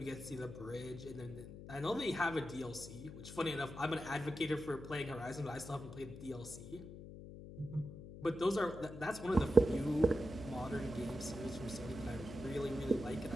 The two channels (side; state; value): left; noise; hum, 12 dB below the sound